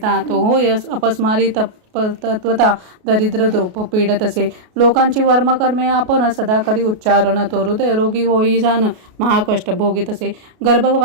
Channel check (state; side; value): late; left; 33 ms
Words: तो होय अपस्मारी तत्वता दरिद्र द्रोप पीडत असे लोकांची वर्मकर्मे आपण सदा करी उच्चारण तो हृदय रोगी होई जाण महाकष्ट भोगीत असे